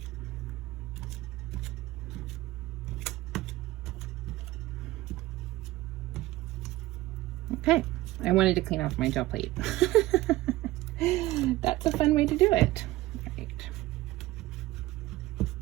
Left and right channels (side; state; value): left; quieter; 17.7 dB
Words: Okay, I wanted to clean off my gel plate. That's a fun way to do it. All right.